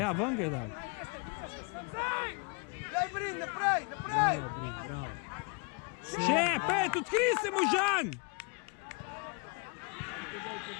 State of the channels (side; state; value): right; quieter; 32.4 dB